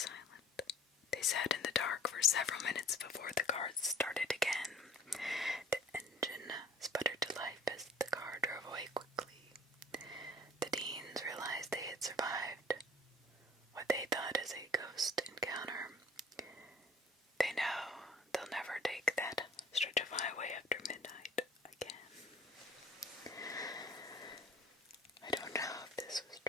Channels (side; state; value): both; normal; correlation 0.51